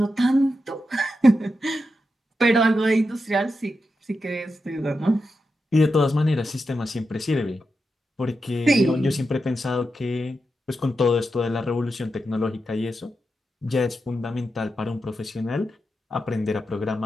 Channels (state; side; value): normal; both; correlation 0.88